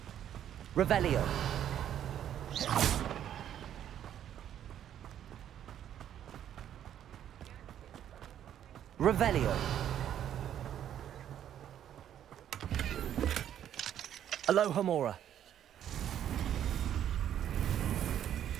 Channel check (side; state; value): left; quieter; 10.4 dB